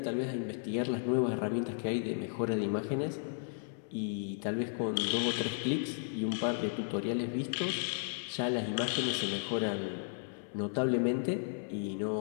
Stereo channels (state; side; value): silent; right; 55 dB below the other